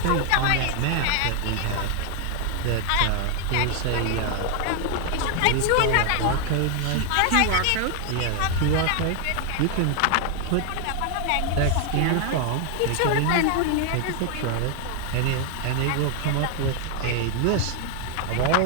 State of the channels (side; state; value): both; different; correlation 0.01